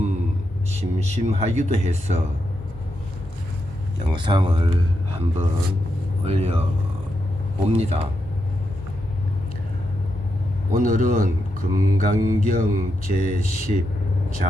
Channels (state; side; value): normal; both; correlation 0.84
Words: 심심하기도 해서 영상을 한번 올려봅니다. 오늘은 금강경 제10